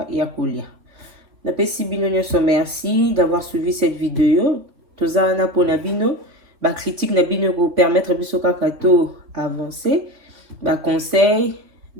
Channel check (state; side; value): late; left; 3.8 ms